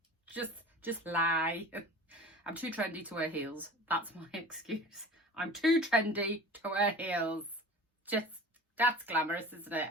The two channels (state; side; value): normal; both; correlation 0.39